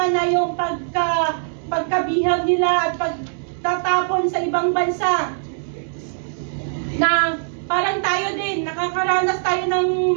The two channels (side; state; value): left; silent; digital silence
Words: na yung pagkabihag nila at pagtatapon sa ibang bansa. Na parang tayo din, nakakaranas tayo